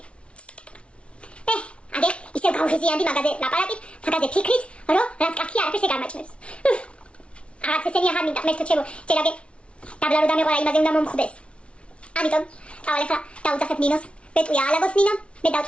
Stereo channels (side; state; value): right; late; 0.060 ms